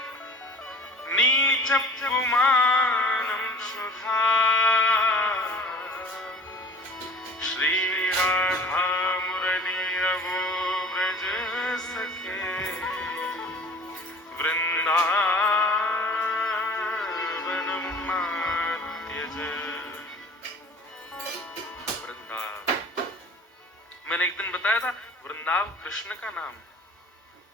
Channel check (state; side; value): normal; both; correlation 0.45